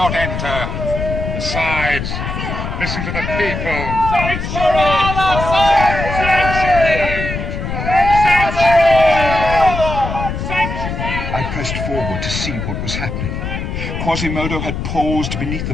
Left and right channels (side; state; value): left; noise; rumble, 4 dB below the sound